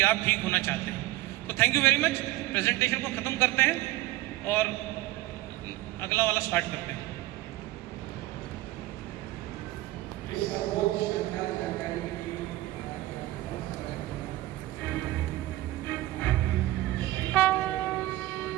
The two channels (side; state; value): left; quieter; 16.8 dB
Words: आप ठीक होना चाहते हैं। तो thank you very much. Presentation को ख़त्म करते हैं और अगला वाला स्टार्ट करते हैं।